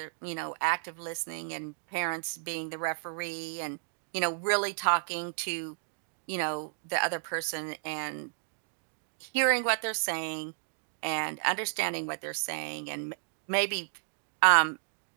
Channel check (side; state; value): left; silent; digital silence